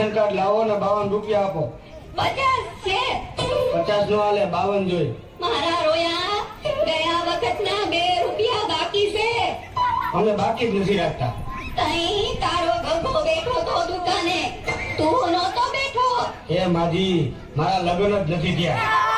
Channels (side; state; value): both; identical; correlation 1.00